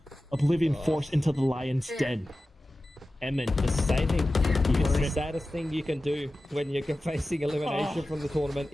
Oblivion Force into the lion's den. Emin just saving. It's the saddest thing you can do when you're facing elimination from the tournament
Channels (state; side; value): normal; both; correlation 0.95